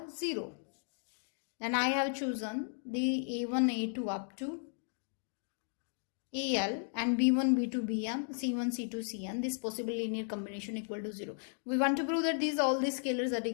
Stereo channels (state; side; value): silent; right; digital silence